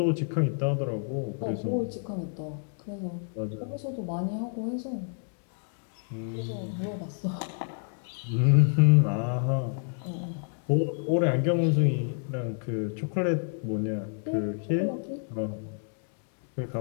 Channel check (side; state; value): right; silent; 59 dB below the other